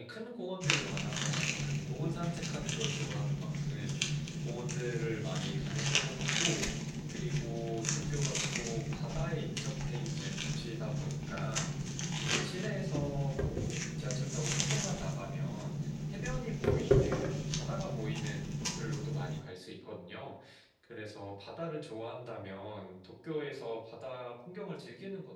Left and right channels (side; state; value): both; identical; correlation 1.00